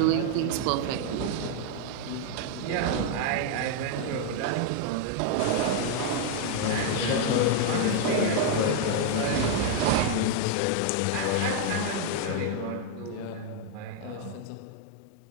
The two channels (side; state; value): both; different; correlation 0.00